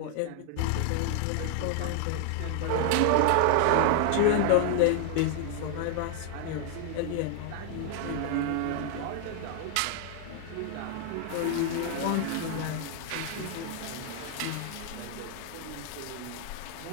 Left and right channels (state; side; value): different; both; correlation 0.00